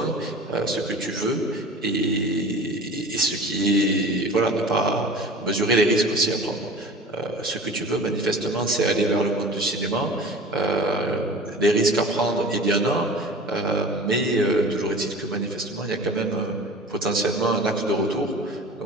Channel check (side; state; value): both; normal; correlation 0.39